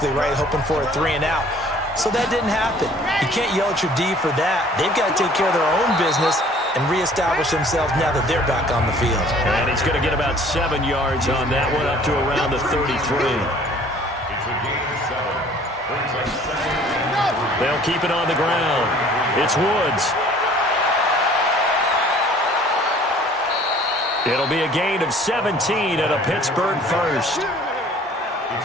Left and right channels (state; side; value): normal; both; correlation 0.53